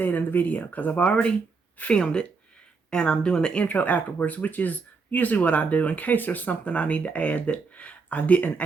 in the video because I've already filmed it. And I'm doing the intro afterwards, which is usually what I do in case there's something I need to add that I didn't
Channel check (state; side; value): quieter; left; 4.7 dB